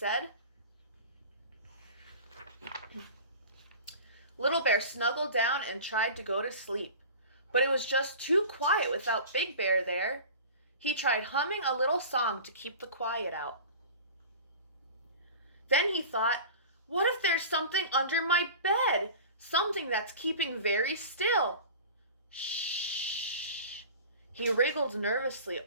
Little Bear snuggled down and tried to go to sleep, but it was just too quiet without Big Bear there. He tried humming a little song to keep the quiet out. Then he thought, what if there's something under my bed? Something that's keeping very still. Shh. He wriggled nervously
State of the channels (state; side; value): inverted; both; correlation -0.37